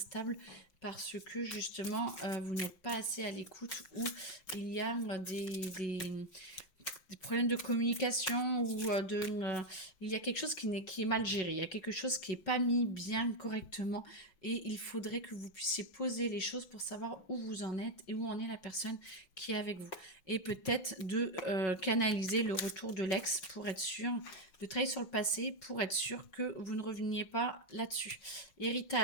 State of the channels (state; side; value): late; right; 5.3 ms